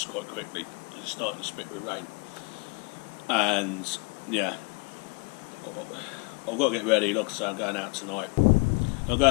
quite quickly. It's starting to spit with rain, and yeah, I've got to get ready. Like I say, I'm going out tonight. I'm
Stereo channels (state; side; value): quieter; right; 30.2 dB